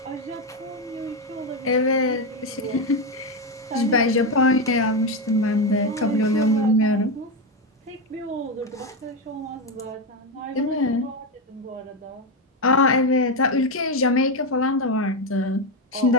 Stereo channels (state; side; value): normal; both; correlation 0.10